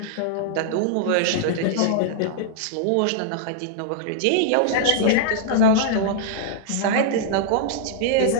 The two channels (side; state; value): both; different; correlation -0.01